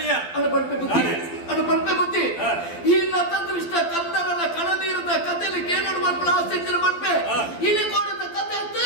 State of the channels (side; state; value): right; late; 12 ms